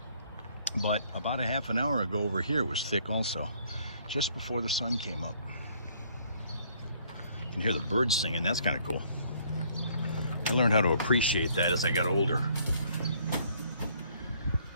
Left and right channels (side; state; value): both; inverted; correlation -0.63